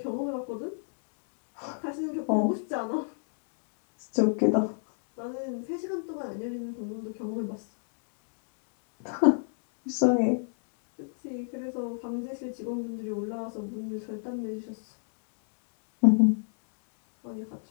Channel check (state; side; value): silent; right; digital silence